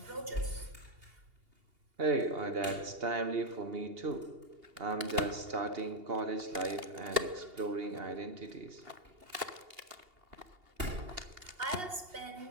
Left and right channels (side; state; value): left; late; 2.8 ms